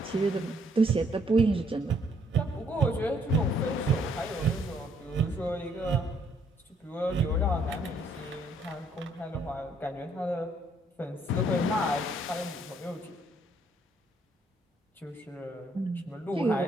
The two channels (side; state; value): both; normal; correlation 0.68